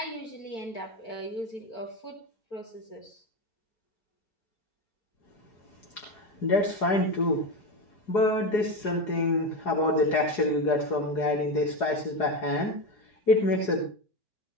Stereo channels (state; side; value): late; right; 4.9 ms